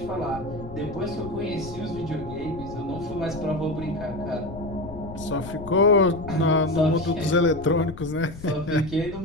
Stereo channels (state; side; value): noise; left; rumble, 13 dB below the sound